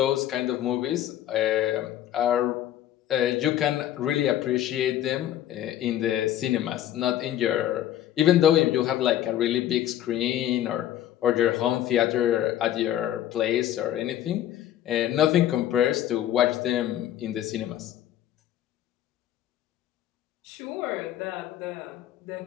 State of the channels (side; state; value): right; quieter; 12.0 dB